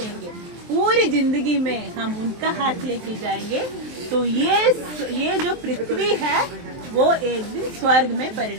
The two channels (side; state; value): left; late; 23 ms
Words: पूरी जिंदगी में हम उनका हाथ लेके जाएंगे तो ये जो पृथ्वी है वो एक दिन स्वर्ग में